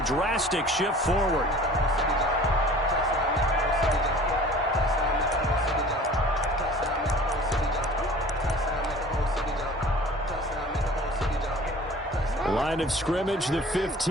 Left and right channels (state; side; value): normal; both; correlation 0.45